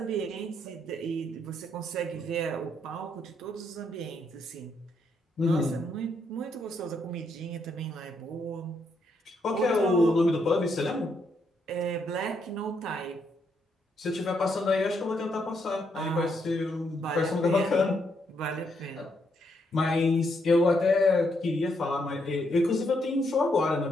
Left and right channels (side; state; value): both; normal; correlation 0.76